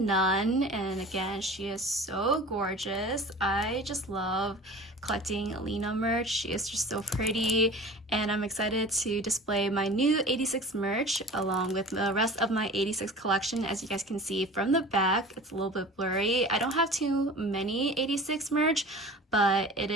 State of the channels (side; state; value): both; normal; correlation 0.40